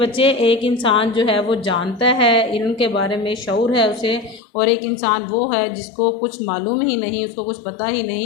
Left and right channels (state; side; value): drops out; right; at 4.4 s